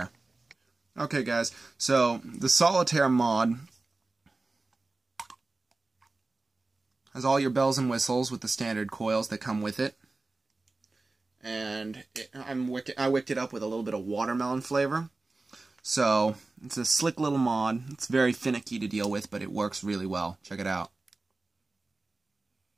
Okay guys, so the Solitaire mod has all your bells and whistles with the standard coils that come with it. And I wicked it up with a little bit of watermelon flavor. So, it's a slick little mod. It's very finicky to deal with, but it works really well. Check it out.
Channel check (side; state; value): left; quieter; 3.4 dB